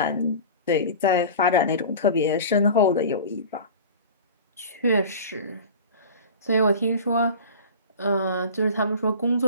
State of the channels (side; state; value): both; inverted; correlation -0.37